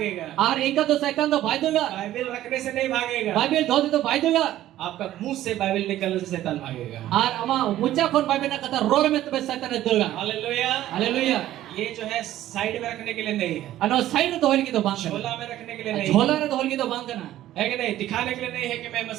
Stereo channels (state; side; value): quieter; left; 13.6 dB